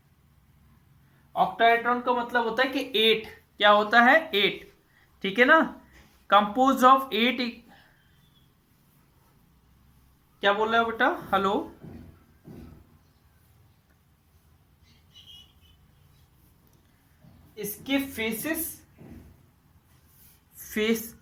ऑक्टाहेड्रॉन का मतलब होता है कि 8, क्या होता है, 8, ठीक है ना, कंपोज ऑफ 8, क्या बोल रहे हो बेटा, हेलो, इसके फेसेस, फेस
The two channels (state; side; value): identical; both; correlation 1.00